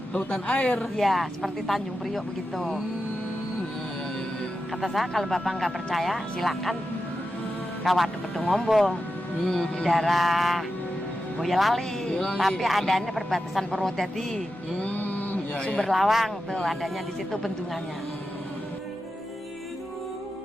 Lautan air. Ya, seperti Tanjung Priok begitu. Kata saya kalau Bapak nggak percaya, silakan ke Waduk Kedung Ombo di daerah Boyolali. Tapi adanya perbatasan Purwodadi, Sumber Lawang tuh adanya di situ bendungannya.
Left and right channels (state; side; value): normal; both; correlation 0.90